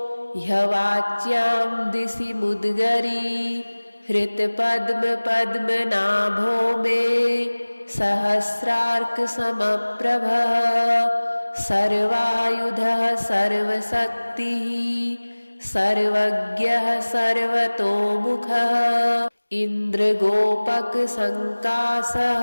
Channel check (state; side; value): inverted; both; correlation -1.00